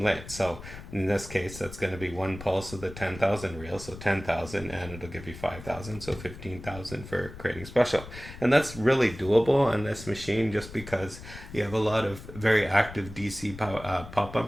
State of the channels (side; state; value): left; noise; rumble, 14 dB below the sound